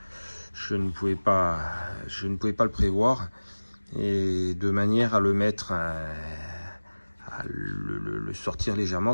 je ne pouvais pas le prévoir, et de manière à le mettre, à le sortir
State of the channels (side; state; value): both; inverted; correlation -1.00